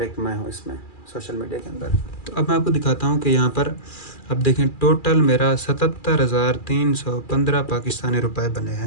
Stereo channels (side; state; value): right; late; 2.4 ms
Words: एक मैं हूँ इसमें सोशल मीडिया के अंदर। तो अब मैं आपको दिखाता हूँ कि यहाँ पर अब देखें, टोटल मेरा 77,315 पाकिस्तानी रुपए बने